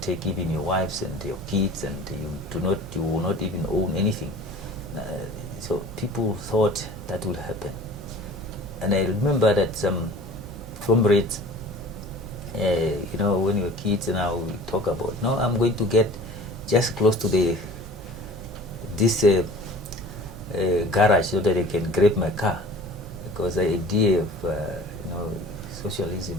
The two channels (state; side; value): normal; both; correlation 0.43